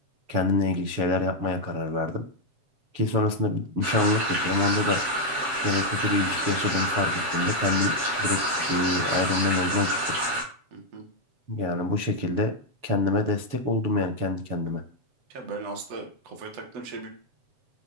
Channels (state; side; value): late; left; 7.5 ms